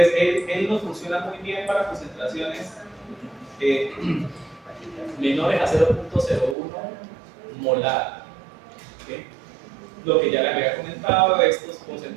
él nos funciona muy bien para concentraciones menores a 0.01 molar. ¿Okay? Lo que ya les había comentado, estas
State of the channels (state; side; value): drops out; left; at 6.6 s